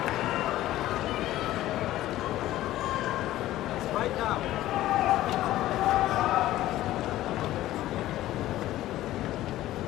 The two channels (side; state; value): right; quieter; 14.8 dB